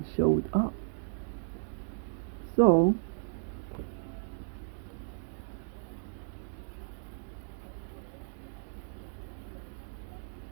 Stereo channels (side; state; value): left; silent; digital silence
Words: showed up. So